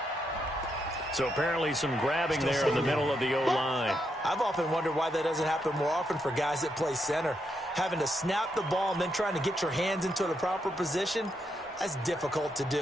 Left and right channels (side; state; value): both; normal; correlation 0.80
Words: So apparently some grabbing there in the middle of the O-line. I've often wondered why that doesn't happen more often for guys that play center. Having to snap the ball and then trying to get your hands into the proper position, that's difficult to